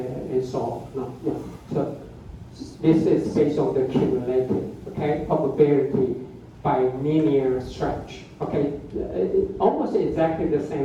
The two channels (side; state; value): both; identical; correlation 1.00